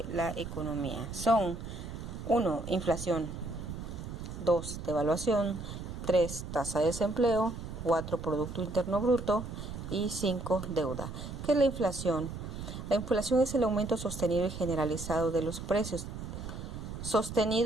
la economía son: 1. Inflación. 2. Devaluación. 3. Tasa de desempleo. 4. Producto Interno Bruto. Y 5. Deuda. ¿Qué es la inflación? La inflación es el aumento sostenido y generalizado de los precios.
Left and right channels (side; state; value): right; noise; rumble, 8 dB below the sound